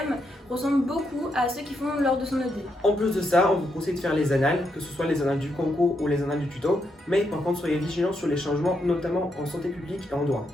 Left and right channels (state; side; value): normal; both; correlation 0.80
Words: ressemblent beaucoup à ceux qui font lors de son ED. En plus de ça, on vous conseille de faire les annales, que ce soit les annales du concours ou les annales du tuto, mais par contre soyez vigilants sur les changements, notamment en santé publique et en droit.